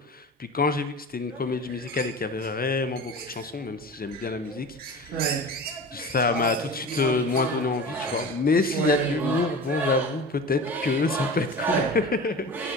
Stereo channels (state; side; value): normal; both; correlation 0.34